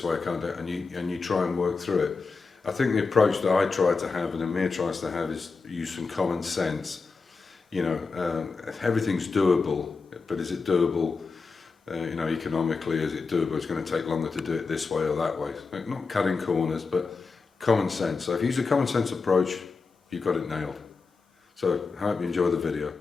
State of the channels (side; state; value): right; quieter; 4.5 dB